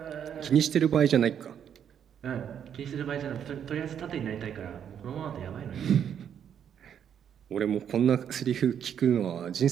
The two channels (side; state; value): left; quieter; 8.7 dB